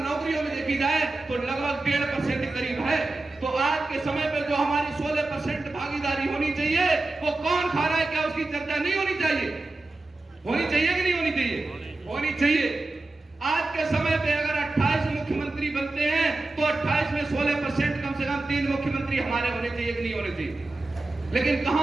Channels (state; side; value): quieter; left; 3.1 dB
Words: में देखी जाए तो लगभग 1.5% करीब है। तो आज के समय पे जो हमारी 16% भागीदारी होनी चाहिए वो कौन खा रहा है? क्या उसकी चर्चा नहीं होनी चाहिए? होनी चाहिए कि नहीं होनी चाहिए? होनी चाहिए। आज के समय पे अगर 28 मुख्यमंत्री बनते हैं तो 28 में 16% कम से कम 3 मुख्यमंत्री हमारे होने चाहिए कि नहीं होने चाहिए? लेकिन